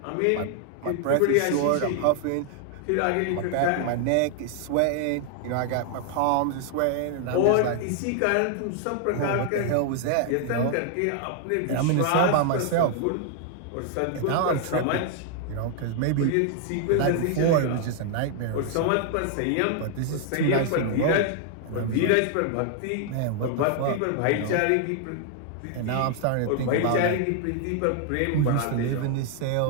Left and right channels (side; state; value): both; different; correlation 0.00